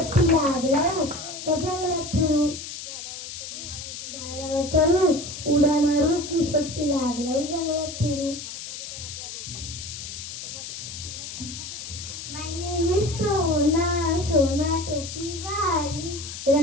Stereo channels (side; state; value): left; noise; hiss, 9 dB below the sound